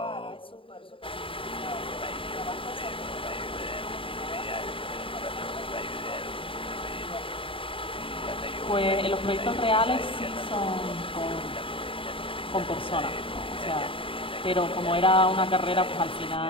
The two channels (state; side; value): late; right; 0.25 ms